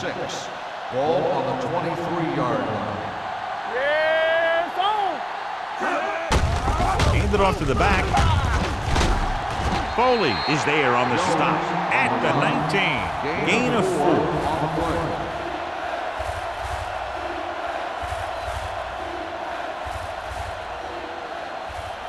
Ball on the 23-yard line. Yeah, it's on. Hand it off to the back. Foley is there on the stop at the 19. Gain of 4. On the play.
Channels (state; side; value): identical; both; correlation 1.00